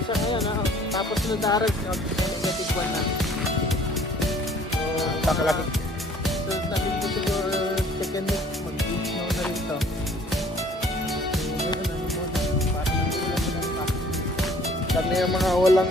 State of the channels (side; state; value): both; normal; correlation 0.55